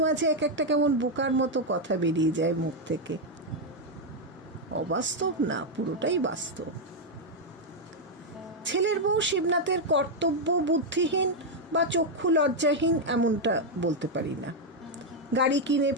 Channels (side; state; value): both; normal; correlation 0.01